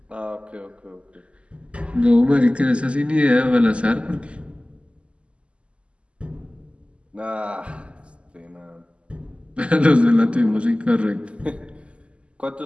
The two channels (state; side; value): late; left; 0.056 ms